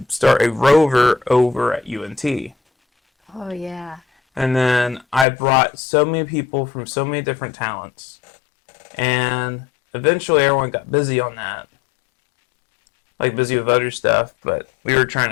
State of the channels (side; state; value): right; drops out; at 5.2 s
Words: start a Rover over at UNT. Oh, yeah. And then I brought so many people from so many different talents. And eventually everyone got busy on that. Like busy with other stuff, but we were trying